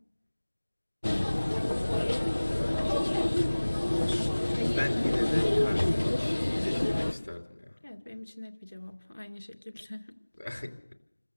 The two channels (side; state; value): both; inverted; correlation -1.00